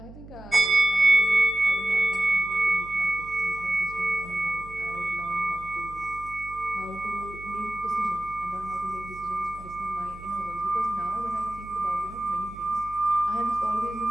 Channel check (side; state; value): right; noise; hum, 17 dB below the sound